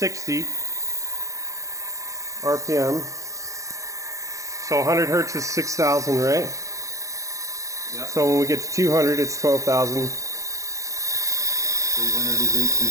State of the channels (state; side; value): late; left; 0.15 ms